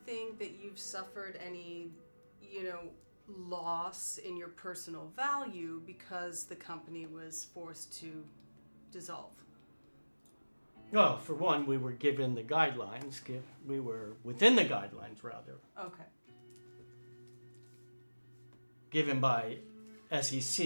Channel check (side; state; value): both; inverted; correlation -1.00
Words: that you've suffered any, loss in your personal value because the company was forced to dissolve? Well, for one, we were given the guidelines. We were within the guidelines, rather. Okay. Given by SEC